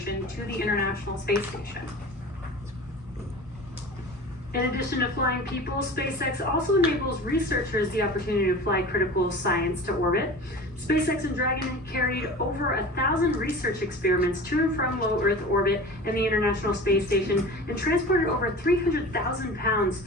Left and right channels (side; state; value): both; normal; correlation 0.36